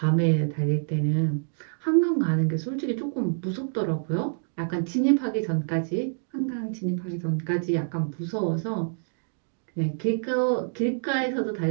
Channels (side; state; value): left; silent; digital silence